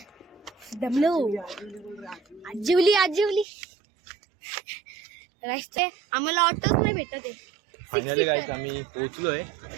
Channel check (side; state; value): left; drops out; at 3.5 s